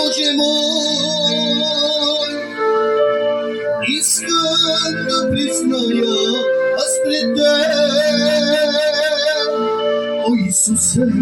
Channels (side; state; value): both; identical; correlation 1.00